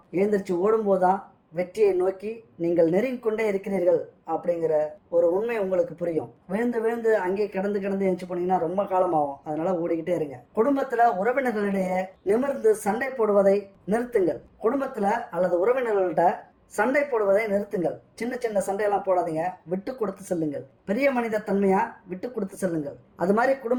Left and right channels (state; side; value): identical; both; correlation 1.00